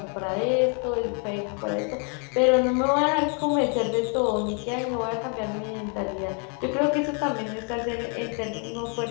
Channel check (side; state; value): right; quieter; 38.9 dB